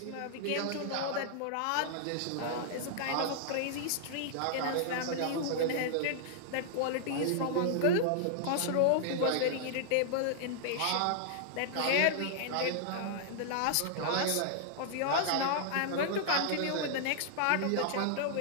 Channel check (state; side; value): different; both; correlation -0.01